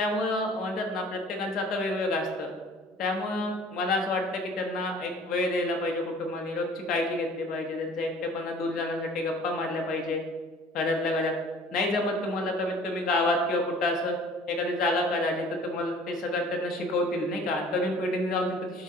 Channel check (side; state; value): both; normal; correlation 0.49